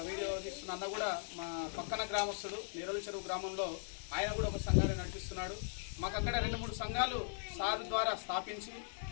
వీడియో తీస్తున్న అన్న కూడా మా పక్కన గ్రామస్తుడు నీరోలి చెరువు గ్రామంలో ఆయన కూడా ఒక సంఘాన్ని నడిపిస్తున్నాడు. మాకు అక్కడ 2-3 సంఘాలు సార్ ద్వారా స్థాపించి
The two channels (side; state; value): right; silent; digital silence